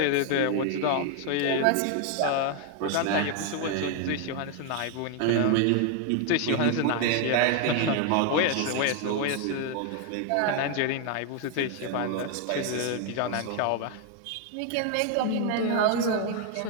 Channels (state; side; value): different; both; correlation 0.01